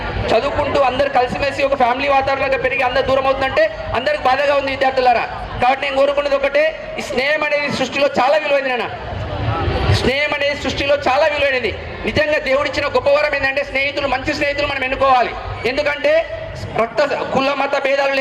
చదువుకుంటూ అందరు కలిసిమెలిసి ఒక ఫ్యామిలీ వాతావరణంగా పెరిగి అందరు దూరం అవుతుందంటే అందరికి బాధగా ఉంది విద్యార్థులారా. కాబట్టి నేను కోరుకున్నది ఒకటే, ఈ స్నేహం అనేది సృష్టిలో చాలా విలువైంది నిజంగా దేవుడిచ్చిన గొప్ప వరం ఏంటంటే మంచి స్నేహితులు మనం ఎన్నుకోవాలి. ఎందుకంటే కుల మత భేదాలు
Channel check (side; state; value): both; identical; correlation 1.00